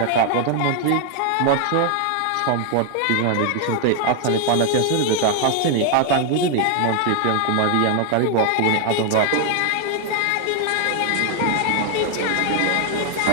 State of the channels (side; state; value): both; different; correlation 0.00